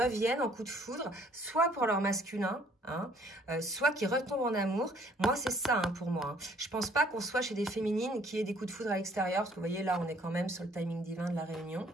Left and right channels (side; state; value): both; normal; correlation 0.60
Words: en coup de foudre, soit pour leur masculin, hein, soit qui retombent en amour. Moi, c'est ça hein, pour moi. Hein. Je pense pas qu'on soit chez des féminines qui aient des coups de foudre à l'extérieur, parce que vous voyez, là, on est quand même sur le timing divin de la réunion,